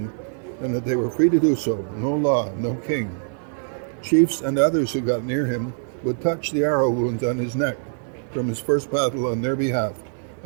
and that they were free to do so, no law, no king. Chiefs and others who got near him would touch the arrow wounds on his neck from his first battle on their behalf,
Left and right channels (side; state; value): left; silent; 61 dB below the other